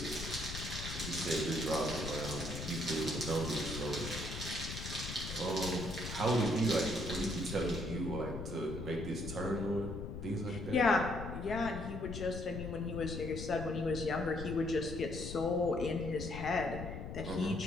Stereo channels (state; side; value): noise; left; rumble, 7 dB below the sound